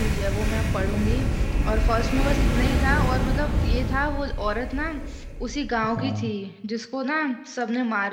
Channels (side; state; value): both; identical; correlation 1.00